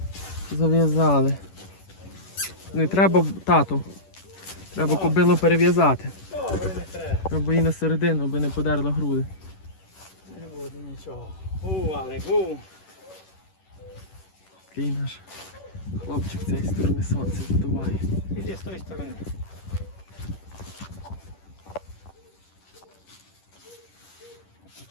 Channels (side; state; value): right; late; 10 ms